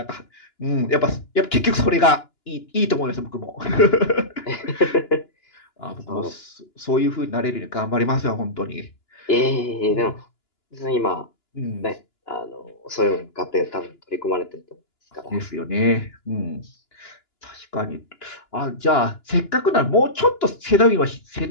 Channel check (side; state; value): right; late; 2.9 ms